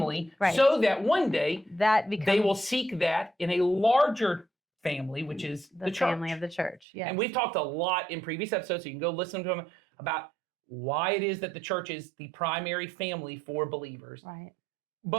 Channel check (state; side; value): drops out; left; at 6.9 s